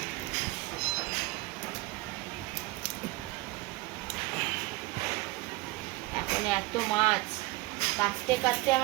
এখন এত মাছ কাটতে কাটতে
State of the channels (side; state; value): left; quieter; 22.0 dB